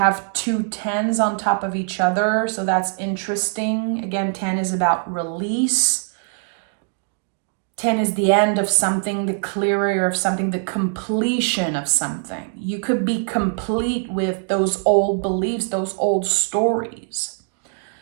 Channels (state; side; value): silent; left; 56 dB below the other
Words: 2 10s on top of each other, so that's interesting. Again, 10 is about release. 10 is the end of something, the clearer of something, the completion of something. You could be complete with those old beliefs, those old stories.